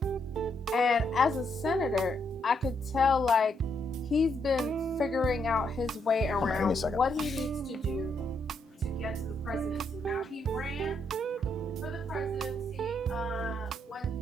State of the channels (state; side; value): normal; both; correlation 0.76